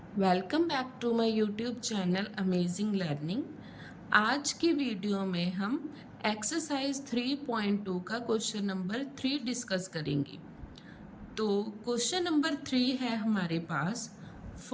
welcome back to my YouTube channel amazing learning. आज की video में हम exercise 3.2 का क्वेश्चन नंबर 3 डिस्कस करेंगे। तो क्वेश्चन नंबर 3 है हमारे पास,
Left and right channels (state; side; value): identical; both; correlation 1.00